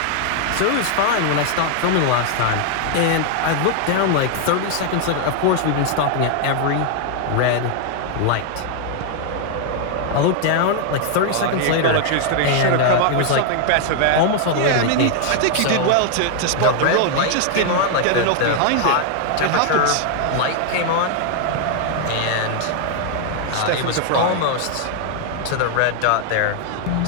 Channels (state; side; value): different; both; correlation 0.00